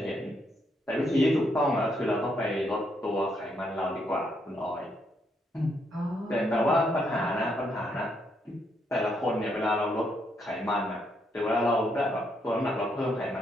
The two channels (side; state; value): both; normal; correlation 0.75